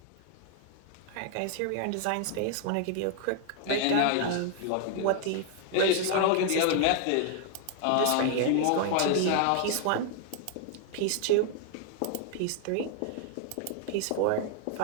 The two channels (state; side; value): different; both; correlation 0.00